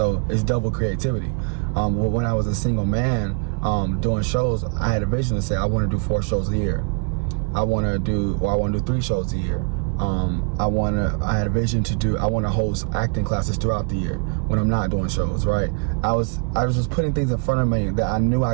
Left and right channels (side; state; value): left; quieter; 39.7 dB